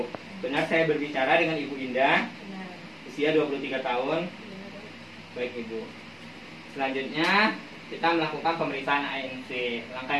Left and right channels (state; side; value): identical; both; correlation 1.00